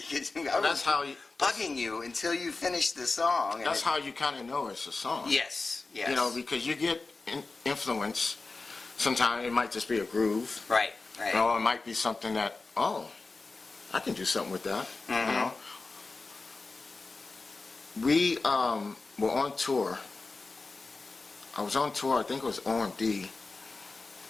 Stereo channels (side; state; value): right; quieter; 3.8 dB